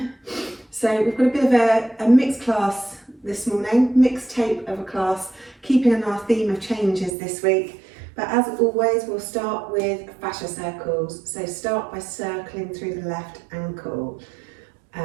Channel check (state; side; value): drops out; left; at 7.1 s